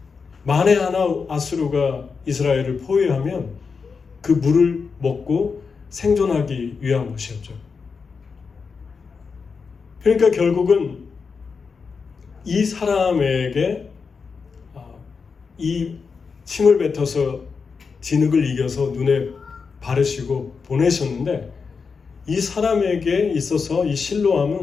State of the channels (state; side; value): quieter; right; 5.2 dB